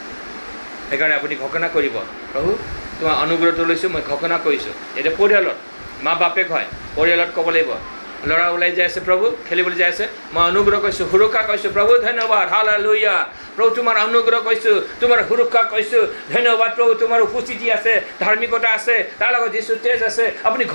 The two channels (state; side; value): inverted; both; correlation -1.00